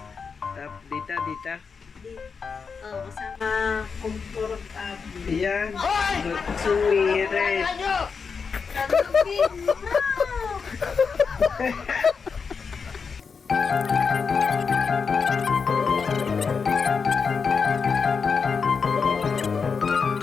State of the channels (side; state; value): right; quieter; 5.5 dB